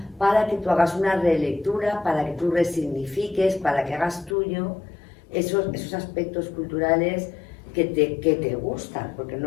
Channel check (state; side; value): drops out; right; at 4.4 s